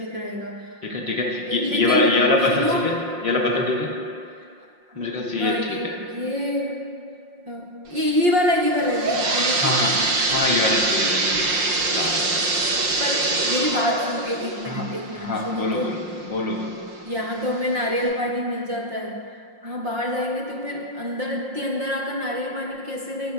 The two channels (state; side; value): late; left; 5.6 ms